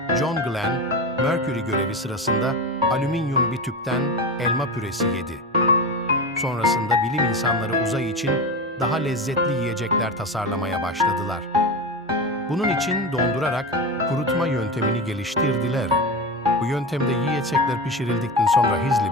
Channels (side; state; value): both; normal; correlation 0.23